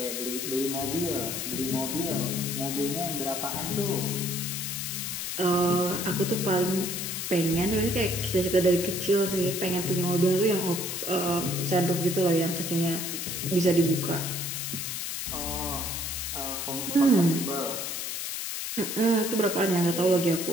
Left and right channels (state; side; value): noise; left; hiss, 4 dB below the sound